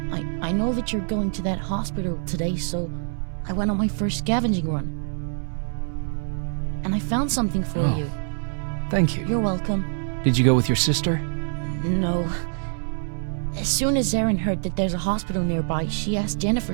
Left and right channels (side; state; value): left; silent; 62 dB below the other